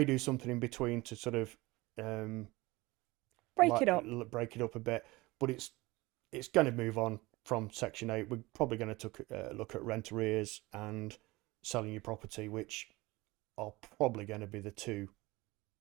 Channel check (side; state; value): left; quieter; 21.4 dB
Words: do something in between to sort of break it up a bit, but it's going to move on from Section 8. We're probably going to look at rent arrears and selling your property, which are probably going to be the two